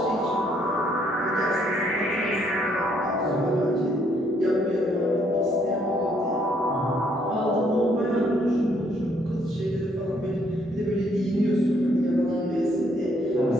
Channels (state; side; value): normal; both; correlation 0.69